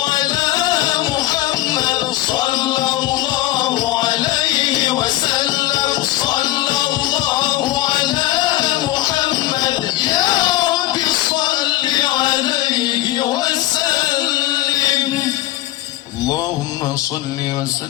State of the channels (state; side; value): quieter; right; 16.4 dB